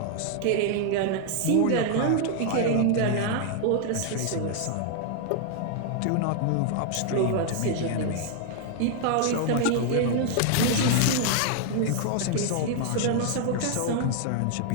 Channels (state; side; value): different; both; correlation 0.00